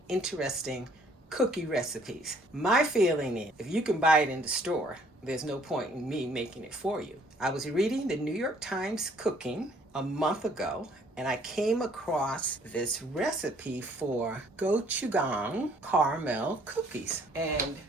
interesting cookie recipes. My feeling is if you can buy it in the store, there's no point in me making it for you. I was reading the New York Times Cooking a month ago, and I came across this recipe for Gochujang caramel cookies. And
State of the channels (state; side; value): normal; both; correlation 0.61